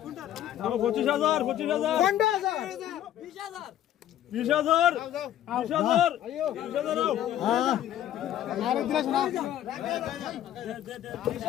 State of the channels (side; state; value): right; quieter; 11.9 dB